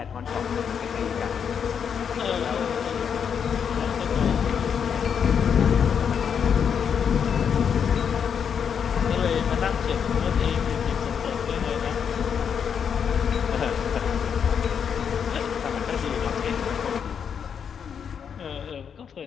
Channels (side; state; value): right; quieter; 7.3 dB